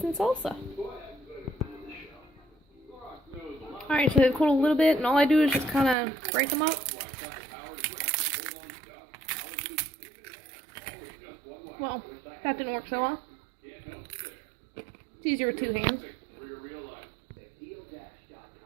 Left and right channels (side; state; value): left; drops out; at 6.0 s